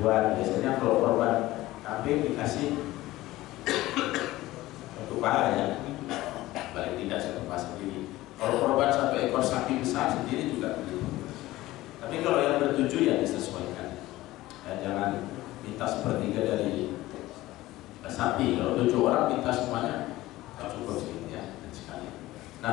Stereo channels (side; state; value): right; quieter; 17.2 dB